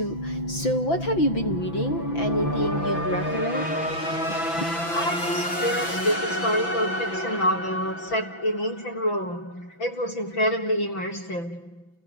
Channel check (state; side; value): late; right; 6.0 ms